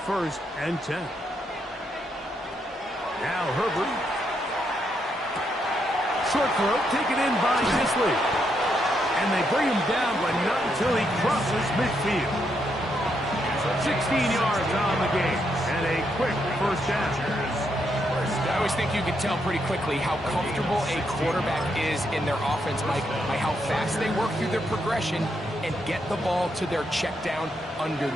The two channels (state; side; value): normal; both; correlation 0.78